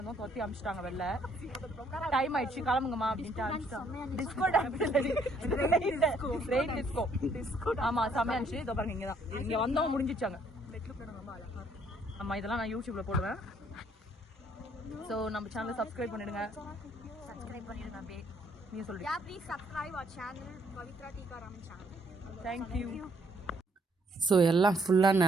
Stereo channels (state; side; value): normal; both; correlation 0.67